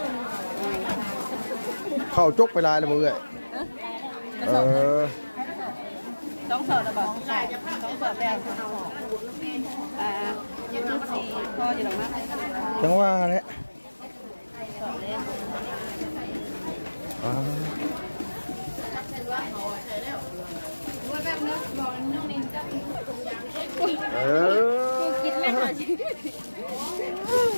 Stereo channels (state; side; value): inverted; both; correlation -1.00